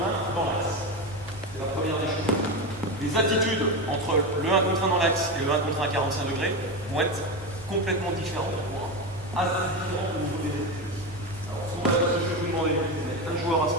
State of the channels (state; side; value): noise; left; hum, 19 dB below the sound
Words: 1 dans l'axe. C'est la première des choses. Les attitudes entre le 1 contre 1 dans l'axe et le 1 contre 1 à 45 degrés vont être complètement différentes, assez différentes au niveau des attitudes. Alors ce que je vais vous demander, c'est de mettre un joueur à ce